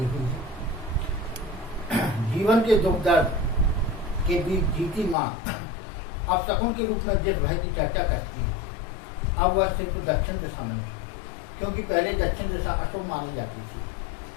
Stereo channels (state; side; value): drops out; right; at 5.2 s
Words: हुई है। जीवन के दुख दर्द के बीच जीती माँ अब शकुन के रूप में जिस भय की चर्चा करती है, अब वह सिर्फ दक्षिण दिशा में है, क्योंकि पहले दक्षिण दिशा अशुभ मानी जाती थी।